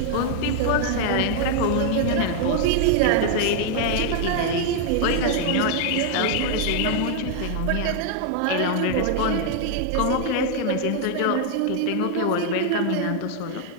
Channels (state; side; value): different; both; correlation 0.00